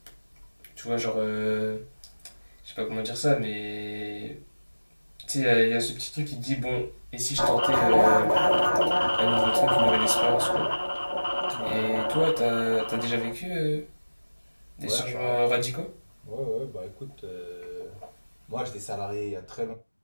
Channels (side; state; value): both; inverted; correlation -1.00